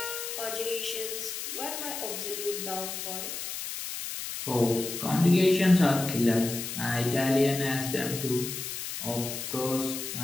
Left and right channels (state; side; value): noise; left; hiss, 6 dB below the sound